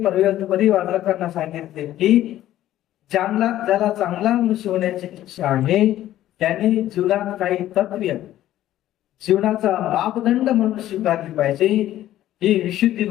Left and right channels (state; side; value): quieter; right; 13.4 dB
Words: परिवाचकांना सांगितले की ज्याला चांगला मनुष्य होण्याची इच्छा आहे त्यांनी जीवनात काही तत्त्व जीवनाचा मापदंड म्हणून स्वीकारली पाहिजे. ही विशुद्धी